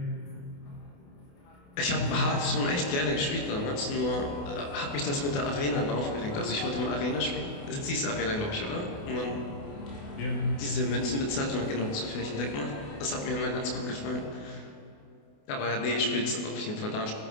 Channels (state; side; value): late; right; 28 ms